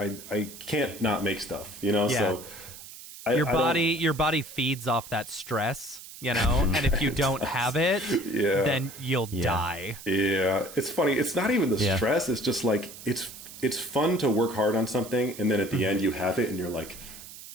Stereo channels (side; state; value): right; noise; hiss, 15 dB below the sound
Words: can't not make stuff, so your body feeds off that stress. And if you don't have it, then you'll die. Yeah, it's funny. It's not even the stress. It's just like, it's fun to work hard on something, and then at the end you have it, and you're like,